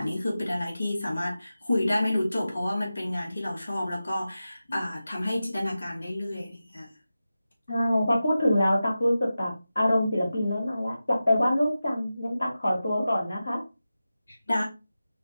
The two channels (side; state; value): both; inverted; correlation -0.94